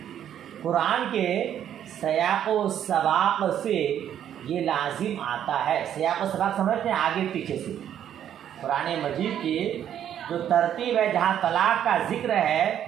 قرآن کے سیاق و سباق سے یہ لازم آتا ہے۔ سیاق و سباق سمجھتے ہیں آگے پیچھے سے، قرآن مجید کی جو ترتیب ہے جہاں طلاق کا ذکر ہے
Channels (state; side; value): quieter; left; 10.1 dB